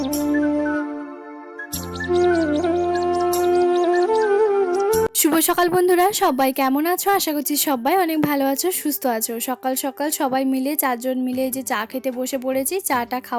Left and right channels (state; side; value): identical; both; correlation 1.00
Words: সকাল বন্ধুরা, সবাই কেমন আছো? আশা করছি সবাই অনেক ভালো আছো, সুস্থ আছো। সকাল সকাল সবাই মিলে 4 জন মিলে যে চা খেতে বসে পড়েছি। চাটা